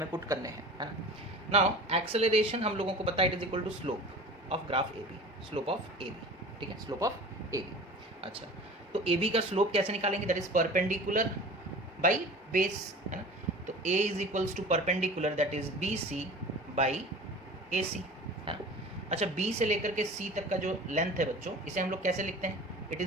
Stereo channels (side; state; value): both; normal; correlation 0.39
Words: पुट करने हैं, है ना। नाउ एक्सेलरेशन हम लोगों को पता है it is equal to slope of graph A B, slope of A B, ठीक है, स्लोप ऑफ ए बी। अच्छा, तो ए बी का स्लोप कैसे निकालेंगे, that is perpendicular by base, है ना, तो a is equals to perpendicular that is B C by A C, है ना। अच्छा, बी से लेकर के सी तक का जो लेंथ है बच्चों, इसे हम लोग कैसे लिखते हैं, it